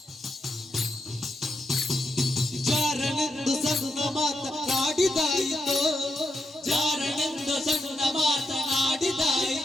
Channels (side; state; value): both; normal; correlation 0.82